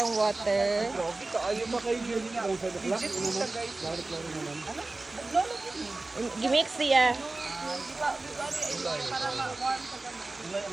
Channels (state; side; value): quieter; left; 3.2 dB